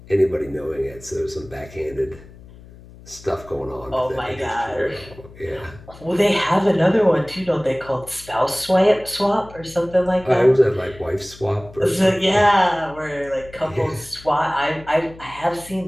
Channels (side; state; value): left; noise; hum, 20 dB below the sound